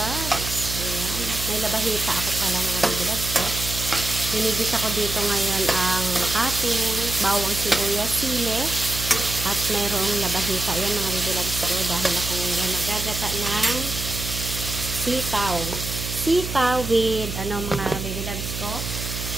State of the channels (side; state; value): right; noise; hum, 6 dB below the sound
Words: Ayan. May labahita ako pala mga baby loves. Hinigis ako dito ngayon ang ating bawang sibuyas, sili at mayroong labahita. Ayan mga baby loves ko. Dahil ako ngayon magagata ng sitaw. Sitaw with mga baby loves ko.